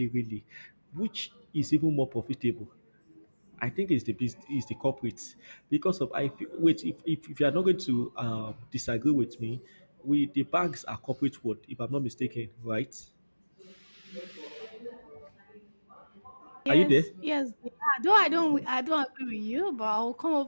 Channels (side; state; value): both; inverted; correlation -1.00